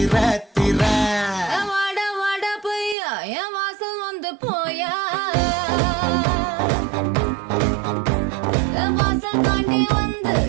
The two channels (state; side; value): drops out; left; at 3.0 s